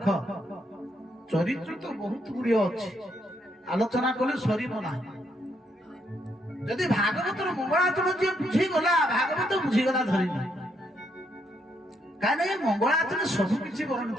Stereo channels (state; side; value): normal; both; correlation 0.75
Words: ଚରିତ୍ର ତ ବହୁତ ଗୁଡ଼ିଏ ଅଛି, ଆଲୋଚନା କଲେ ସରିବ ନାହିଁ। ଯଦି ଭାଗବତର ମଙ୍ଗଳାଚରଣ ଯିଏ ବୁଝିଗଲା ଭାଗବତ ବୁଝିଗଲା ଧରିନି। କାହିଁକି ମଙ୍ଗଳାଚରଣ ସବୁ କିଛି